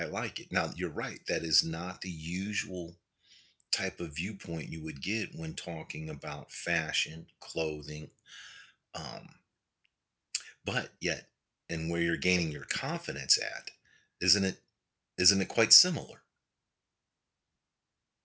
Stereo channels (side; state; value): both; identical; correlation 1.00